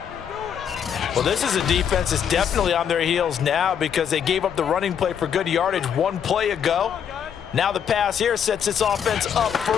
Well, this is a defense that's definitely on their heels now because they gave up the running play for good yardage one play ago. Now the pass here sets this offense up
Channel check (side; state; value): right; quieter; 8.2 dB